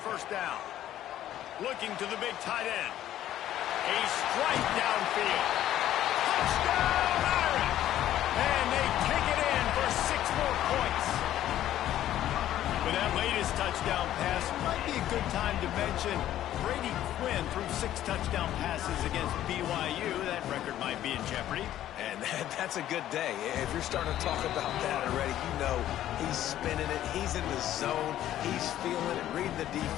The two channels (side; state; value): right; quieter; 12.5 dB